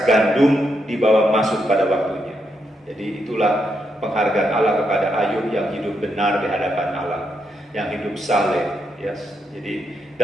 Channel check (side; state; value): both; normal; correlation 0.81